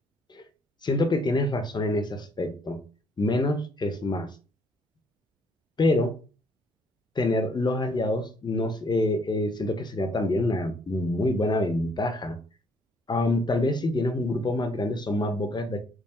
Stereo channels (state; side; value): normal; both; correlation 0.66